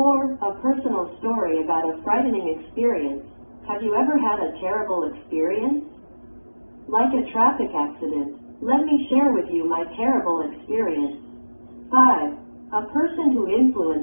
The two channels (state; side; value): inverted; both; correlation -1.00